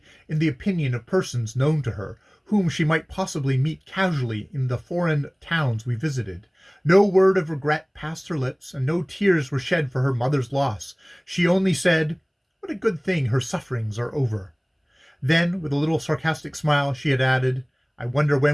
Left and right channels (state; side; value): identical; both; correlation 1.00